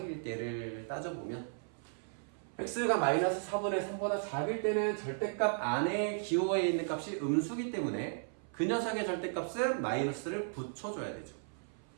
때를 따져보면 x가 마이너스 4분의 3보다 작을 때는 절대값 안에 기호에 있는 값이 음수기 때문에 그 녀석의 절대값은 마이너스를 붙여줘야 되죠.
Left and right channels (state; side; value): silent; left; 54 dB below the other